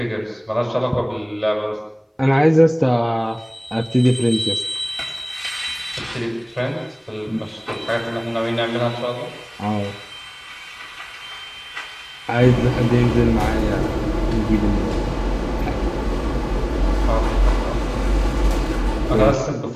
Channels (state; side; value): identical; both; correlation 1.00